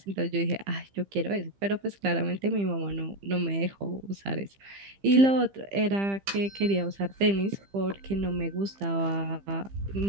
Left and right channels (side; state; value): left; late; 15 ms